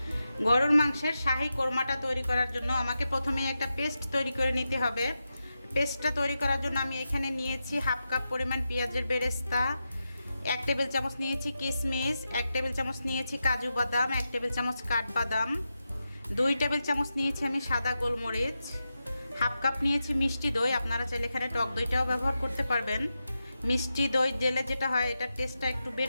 গরুর মাংসের শাহি কোরমাটা তৈরি করার জন্য আমাকে প্রথমেই একটা পেস্ট তৈরি করে নিতে হবে। পেস্টটা তৈরি করার জন্য আমি এখানে নিয়েছি হাফ কাপ পরিমাণ পেঁয়াজের বেরেস্তা, 1 টেবিল চামচ নিয়েছি কিশমিশ, 1 টেবিল চামচ নিয়েছি কাজু বাদাম, 1 টেবিল চামচ কাঠবাদাম, 2 টেবিল চামচ নিয়েছি আমি সাদা গোলমরিচ, হাফ কাপ নিয়েছি মিষ্টি দই। আপনারা চাইলে এখানে টক দইটাও ব্যবহার করতে পারবেন। মিষ্টি দই দিলে যেটা হয় এটার টেস্টটা একটু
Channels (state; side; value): inverted; both; correlation -0.89